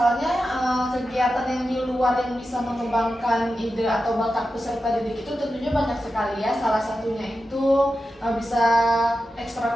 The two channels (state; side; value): normal; both; correlation 0.91